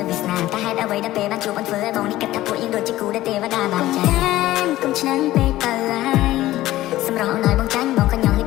វាសនាតែហេតុអ្វីដែលពេលបានជួបអូនធ្វើឲ្យបងនេះគិតថាពួកយើងដូចជាគូដែលទេវតាបានចែកុំឆ្នាំពេកទៅហើយសម្រស់ឲ្យបងចាញ់បងក៏ញ៉ាំលេច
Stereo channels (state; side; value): quieter; right; 15.6 dB